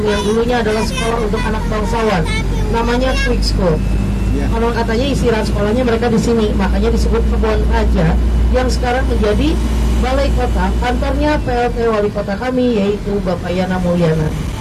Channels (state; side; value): identical; both; correlation 1.00